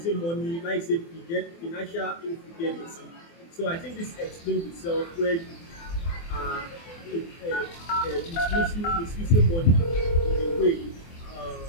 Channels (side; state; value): right; late; 24 ms